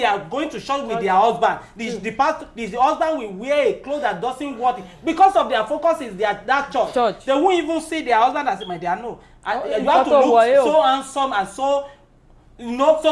are going to church with their husband. The husband will wear a clothes that doesn't work because of their focus is that church. They won't even see their husband as my dear. No, you have to look so handsome and so. Not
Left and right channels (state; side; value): identical; both; correlation 1.00